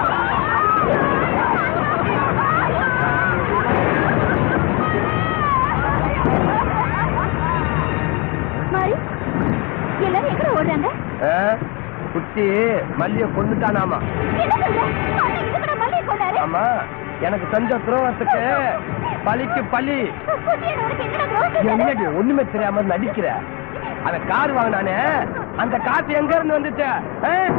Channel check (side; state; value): right; quieter; 29.1 dB